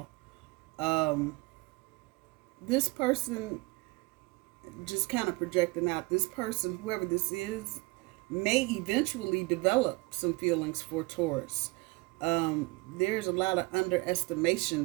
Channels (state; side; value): quieter; left; 24.7 dB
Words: This person, just kind of projecting out, this person, whoever this is, may eventually develop some feelings for Taurus. There's a lot of